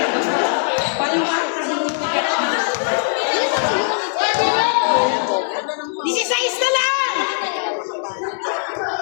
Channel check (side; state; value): right; silent; 66 dB below the other